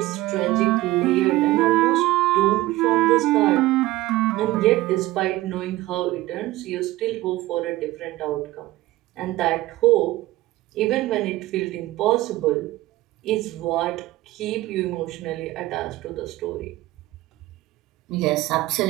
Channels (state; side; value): quieter; left; 17.4 dB